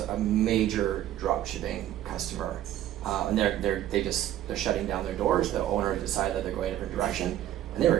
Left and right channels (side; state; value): left; quieter; 12.5 dB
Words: major drop shipping customer, and they're shutting down their doors. The owner decided that they're going a different direction, and they were